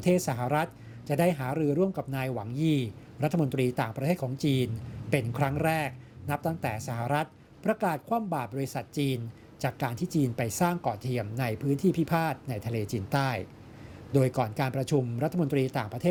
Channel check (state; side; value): identical; both; correlation 1.00